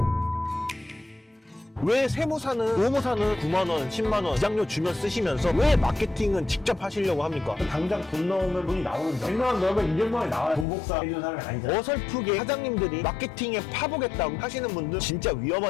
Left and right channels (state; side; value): drops out; right; at 10.7 s